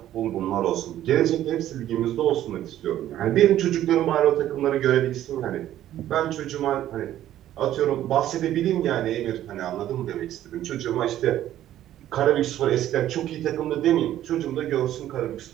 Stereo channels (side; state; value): left; quieter; 12.5 dB